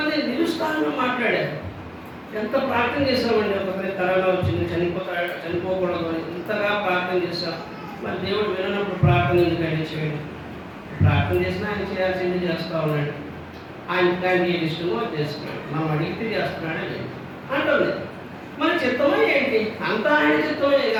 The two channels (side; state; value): both; identical; correlation 1.00